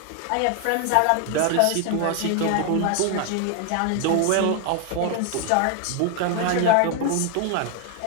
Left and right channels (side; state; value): both; different; correlation 0.01